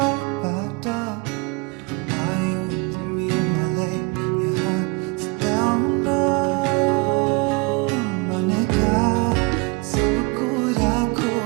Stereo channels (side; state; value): left; quieter; 29.8 dB